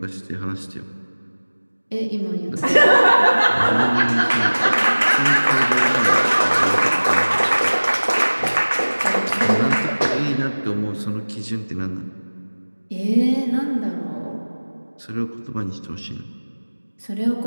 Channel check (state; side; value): inverted; both; correlation -1.00